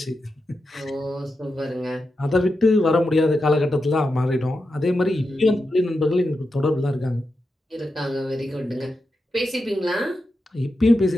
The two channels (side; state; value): both; normal; correlation 0.88